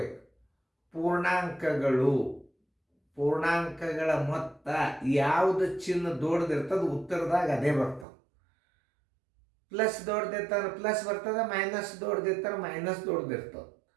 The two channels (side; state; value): left; drops out; at 8.1 s